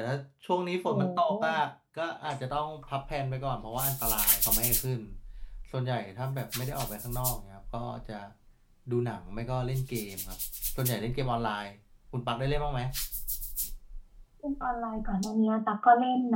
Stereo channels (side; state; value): both; identical; correlation 1.00